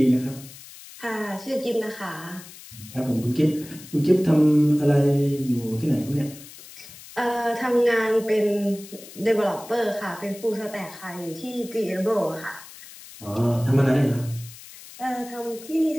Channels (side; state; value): left; noise; hiss, 17 dB below the sound